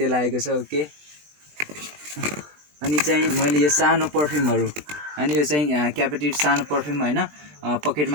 आएको छ, ओके। अनि चाहिँ मैले यो सानो पर्फ्युमहरू, अनि यो चाहिँ क्यापेटिभ सानो पर्फ्युम होइन,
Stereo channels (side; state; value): left; late; 20 ms